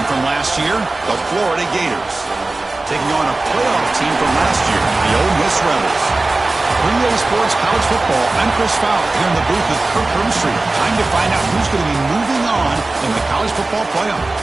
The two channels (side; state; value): left; quieter; 3.1 dB